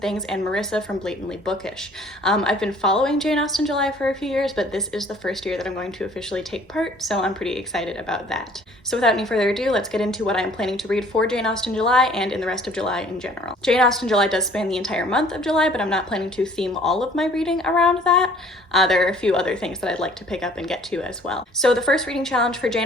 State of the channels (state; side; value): normal; both; correlation 0.55